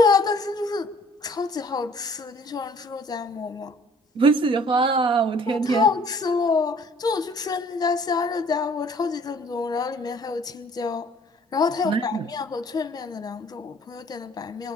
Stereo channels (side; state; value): both; normal; correlation 0.56